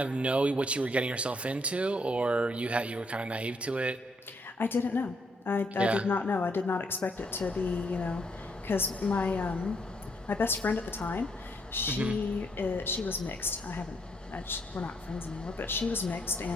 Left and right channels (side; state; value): both; normal; correlation 0.73